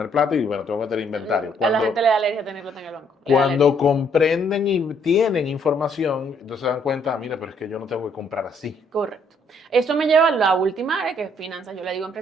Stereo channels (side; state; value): both; normal; correlation 0.67